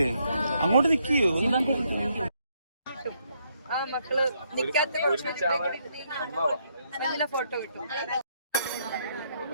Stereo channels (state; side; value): inverted; both; correlation -0.74